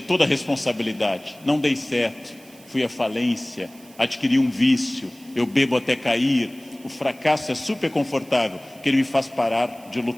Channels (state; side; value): noise; right; hiss, 24 dB below the sound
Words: toda a responsabilidade. Não dei certo, fui à falência, adquiri um vício, eu bebo até cair. O fracasso é super confortável, porque ele me faz parar de